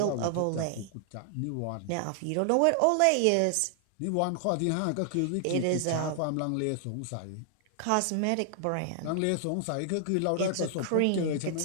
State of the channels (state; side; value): different; both; correlation 0.00